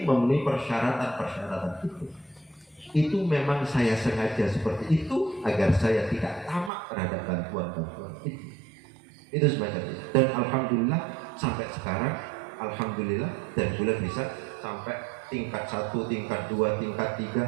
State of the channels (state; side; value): drops out; left; at 6.7 s